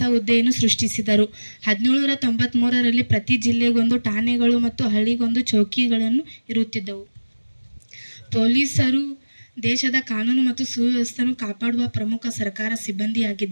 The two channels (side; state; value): both; inverted; correlation -1.00